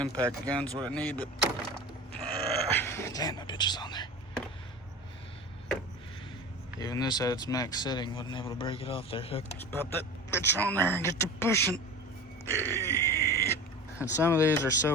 gun's what I need, but damn, that bitch is on there. Even this at its max setting wasn't able to break it off there. Let's pop that bitch on there and get to pushing. And some of these are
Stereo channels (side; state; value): both; normal; correlation 0.33